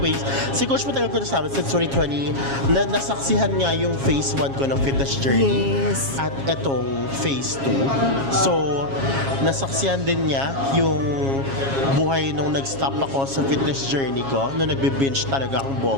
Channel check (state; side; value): late; left; 7.3 ms